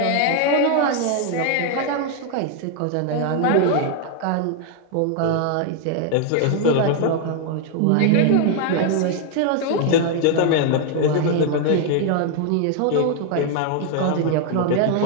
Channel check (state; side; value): different; both; correlation 0.00